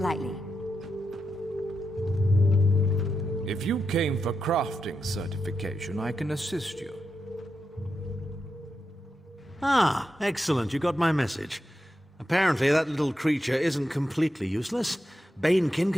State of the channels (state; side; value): normal; both; correlation 0.87